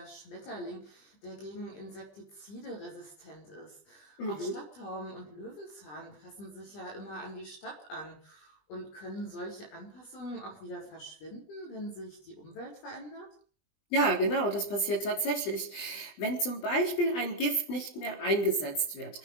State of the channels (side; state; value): right; late; 20 ms